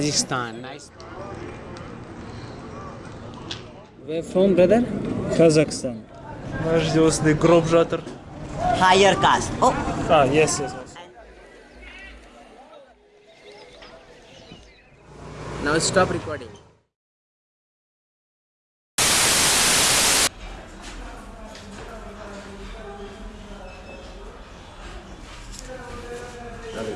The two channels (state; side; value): identical; both; correlation 1.00